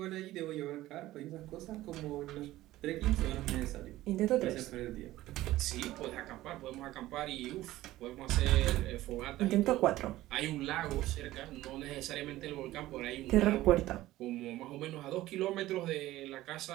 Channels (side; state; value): left; quieter; 16.1 dB